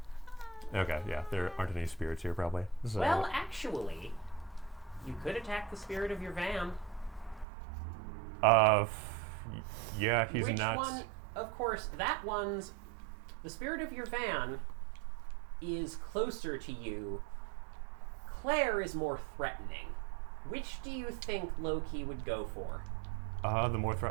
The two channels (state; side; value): drops out; left; at 7.5 s